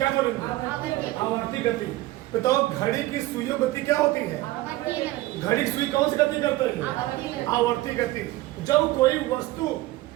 बोलेंगे? आवर्ती गति। बताओ घड़ी की सुइयों गति क्या होती है? घड़ी की सुई कौन सी गति करते हैं? आवर्ती गति। जब कोई वस्तु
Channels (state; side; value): quieter; left; 17.8 dB